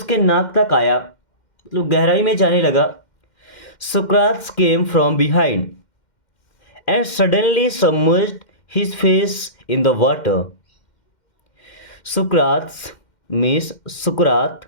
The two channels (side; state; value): right; late; 2.1 ms